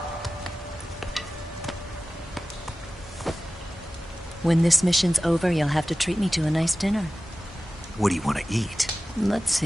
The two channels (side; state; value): both; normal; correlation 0.96